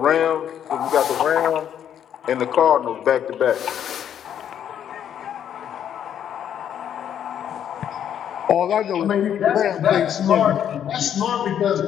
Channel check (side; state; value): right; quieter; 9.5 dB